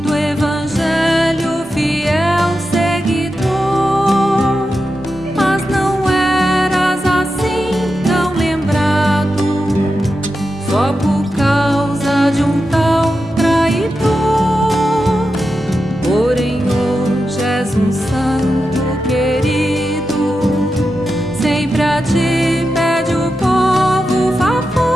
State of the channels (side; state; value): both; normal; correlation 0.90